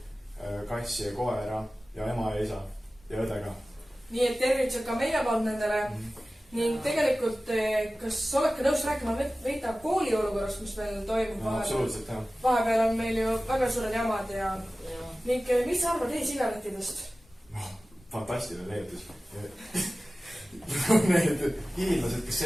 kassi ja koera ja ema ja isa ja õdega. Nii et tervitused ka meie poolt nendele. Ning tegelikult, kas oled ka nõus rääkima veita kooli olukorrast, mis meil toimub vahepeal? Absoluutselt, jah. Vahepeal on meil ju väga suured jamad ja... Ning mis sa arvad e-sigarettidest? Fantastiline leiutis. Need hiinlased, kes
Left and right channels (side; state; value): both; normal; correlation 0.96